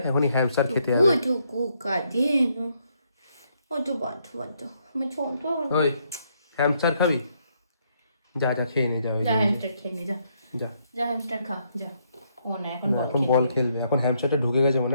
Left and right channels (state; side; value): inverted; both; correlation -0.74